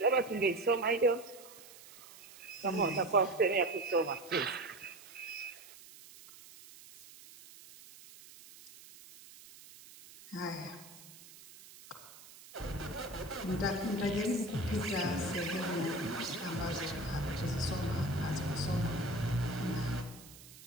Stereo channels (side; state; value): right; noise; hiss, 19 dB below the sound